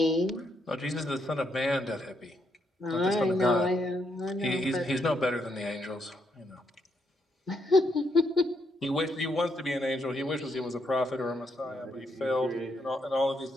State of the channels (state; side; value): normal; both; correlation 0.77